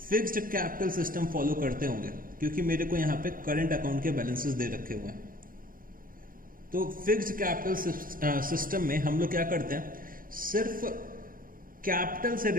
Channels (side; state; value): left; late; 0.41 ms